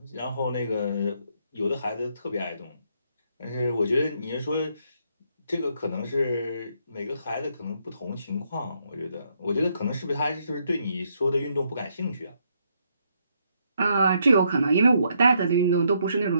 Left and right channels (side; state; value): both; inverted; correlation -0.74